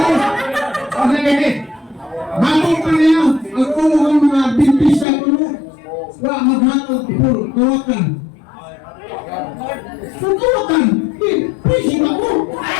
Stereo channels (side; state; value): right; drops out; at 5.1 s